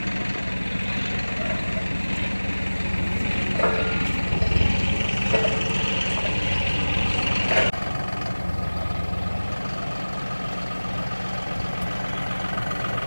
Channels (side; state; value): both; inverted; correlation -1.00